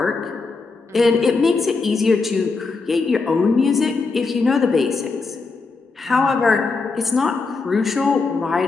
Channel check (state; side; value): quieter; right; 4.2 dB